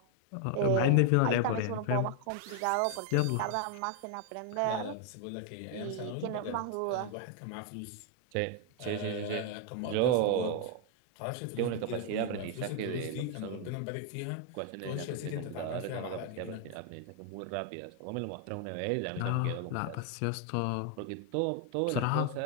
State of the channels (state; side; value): different; both; correlation 0.00